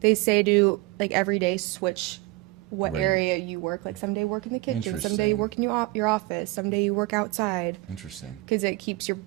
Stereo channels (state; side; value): quieter; left; 20.6 dB